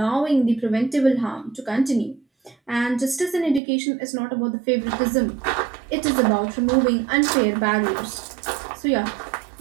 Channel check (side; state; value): left; drops out; at 3.6 s